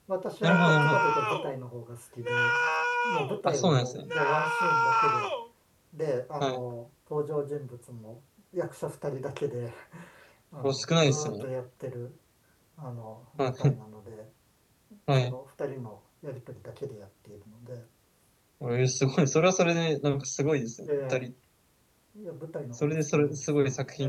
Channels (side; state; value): both; identical; correlation 1.00